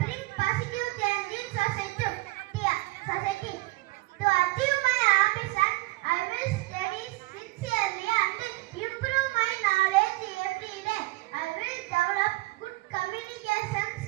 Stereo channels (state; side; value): quieter; left; 22.0 dB